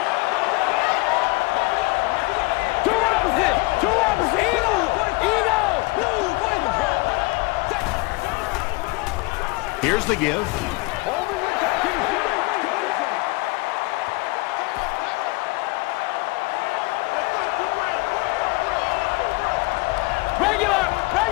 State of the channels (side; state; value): right; quieter; 24.7 dB